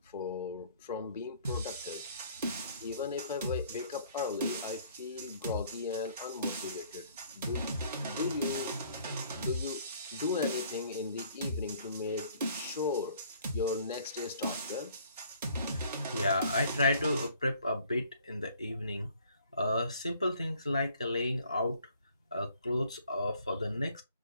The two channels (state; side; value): inverted; both; correlation -0.59